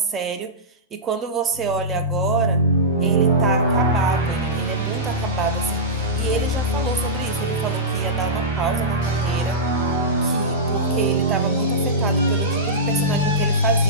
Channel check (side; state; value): both; normal; correlation -0.15